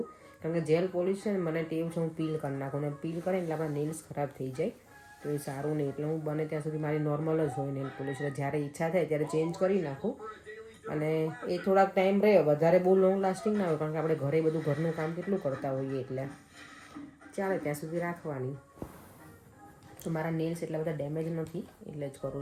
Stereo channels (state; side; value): identical; both; correlation 1.00